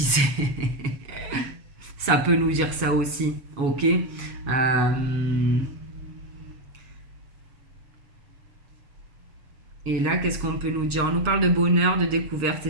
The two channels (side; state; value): left; late; 7.3 ms